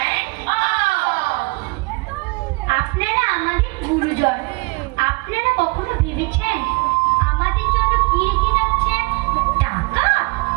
end of. আপনারা আমাদের গুরুজন। আপনারা কখনো ভেবেছেন আমাদের জন্য কি রেখে যাচ্ছেন? টাকা,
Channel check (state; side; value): quieter; left; 27.9 dB